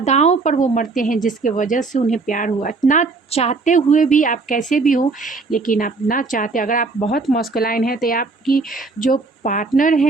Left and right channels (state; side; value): quieter; left; 3.9 dB